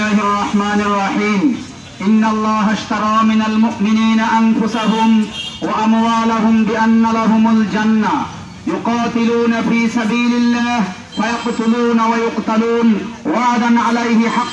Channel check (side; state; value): both; identical; correlation 1.00